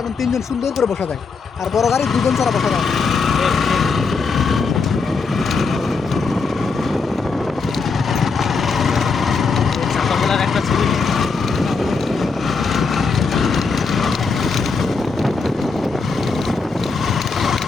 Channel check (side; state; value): right; quieter; 4.6 dB